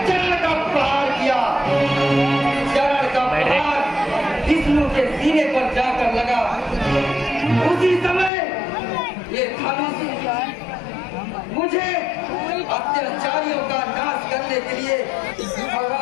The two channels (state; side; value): drops out; right; at 8.3 s